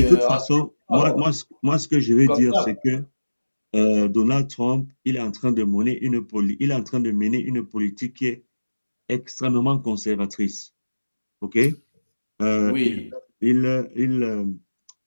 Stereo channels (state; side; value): inverted; both; correlation -1.00